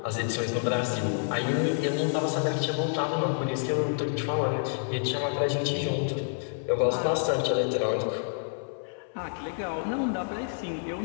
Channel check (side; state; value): right; silent; 59 dB below the other